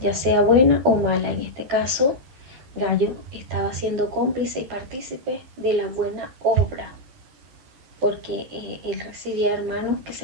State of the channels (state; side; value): late; left; 12 ms